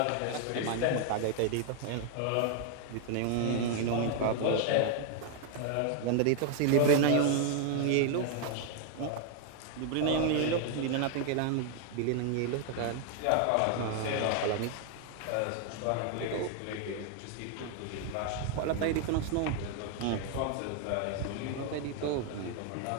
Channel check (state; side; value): different; both; correlation 0.00